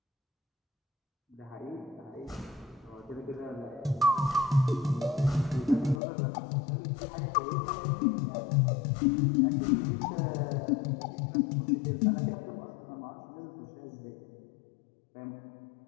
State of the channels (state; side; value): drops out; right; at 6.0 s